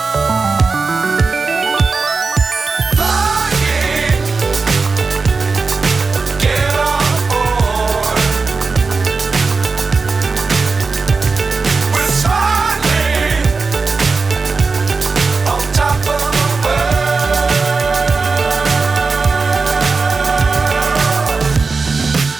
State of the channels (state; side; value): quieter; left; 4.3 dB